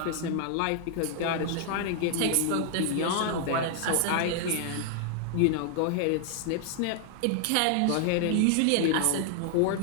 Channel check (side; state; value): both; different; correlation 0.00